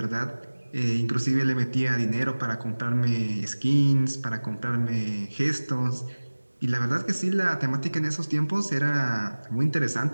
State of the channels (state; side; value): inverted; both; correlation -1.00